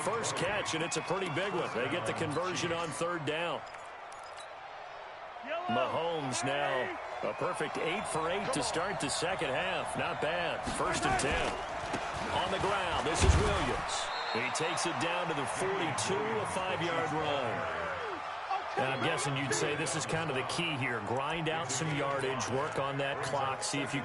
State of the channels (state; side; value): identical; both; correlation 1.00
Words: catch, and it's a pretty big one. They get the conversion on third down. Mahomes now a perfect 8 for 8 to start the second half. Not bad. 1st and 10. On the ground, this is Williams. He takes it down to the 42, a 5-yard run. And I'm guessing you'd say this is kind of the key here. Grind out some yardage, work on that clock, see if you